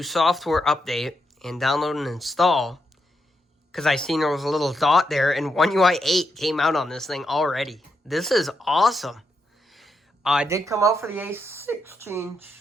software update and download and install because I seen there was a little dot there, and One UI 8 came out on this thing already. This is awesome. I did come out for the A16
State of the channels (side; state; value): both; normal; correlation 0.82